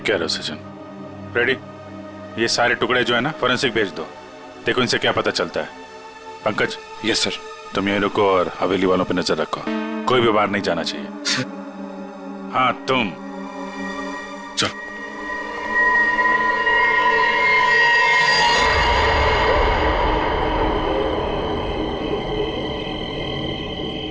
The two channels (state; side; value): identical; both; correlation 1.00